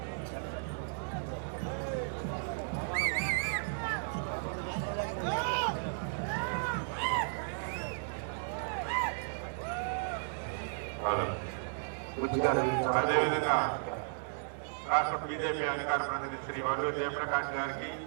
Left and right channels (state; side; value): silent; left; 55 dB below the other